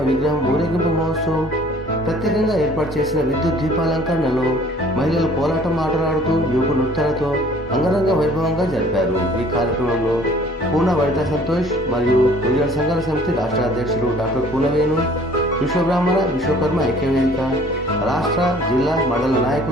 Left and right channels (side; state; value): both; normal; correlation 0.53